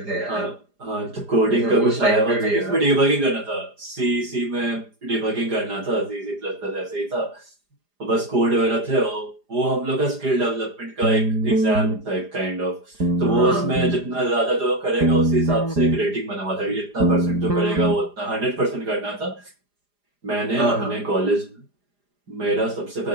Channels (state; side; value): late; left; 4.9 ms